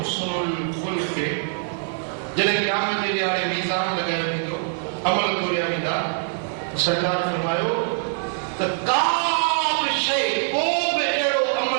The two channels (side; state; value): left; silent; 57 dB below the other